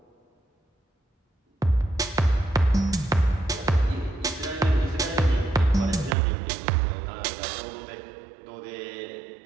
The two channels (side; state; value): left; drops out; at 6.2 s